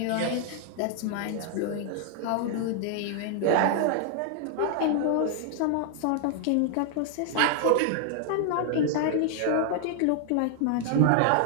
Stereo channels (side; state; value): both; different; correlation 0.00